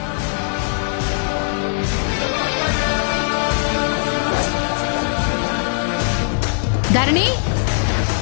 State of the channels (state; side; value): silent; right; digital silence